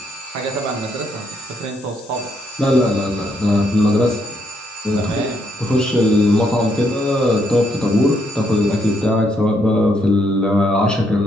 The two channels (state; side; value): normal; both; correlation 0.74